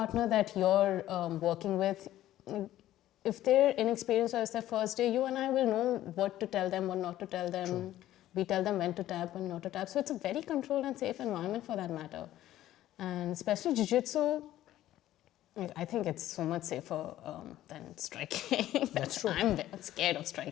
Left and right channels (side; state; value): right; quieter; 13.7 dB